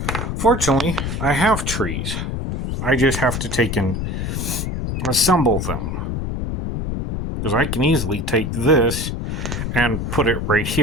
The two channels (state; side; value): noise; left; rumble, 3 dB below the sound